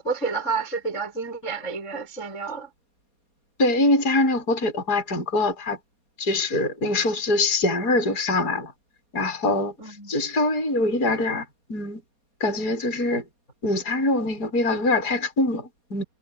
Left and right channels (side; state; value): right; late; 4.2 ms